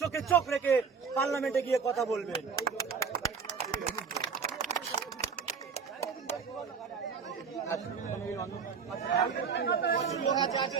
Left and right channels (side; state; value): left; quieter; 5.9 dB